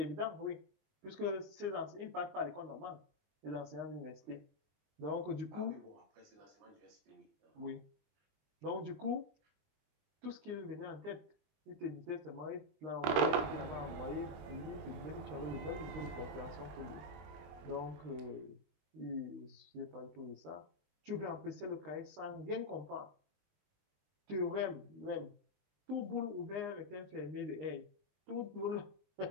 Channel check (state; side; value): late; left; 21 ms